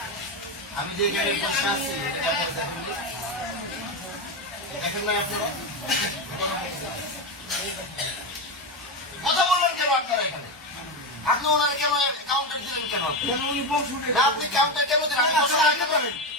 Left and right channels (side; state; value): both; normal; correlation 0.13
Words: আমি যে গাড়ি বসে আছি দেখেন না আপনারা কথা বললেন কেন আপনারা এখানে? আপনি ওনার কেন কাউন্টার দিলেন কেন? আপনি কাউন্টার কেন দিলেন?